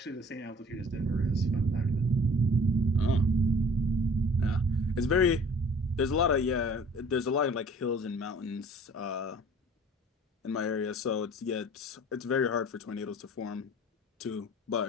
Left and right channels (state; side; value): normal; both; correlation 0.50